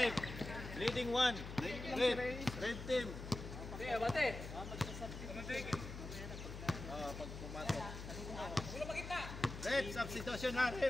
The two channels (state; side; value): noise; left; hum, 9 dB below the sound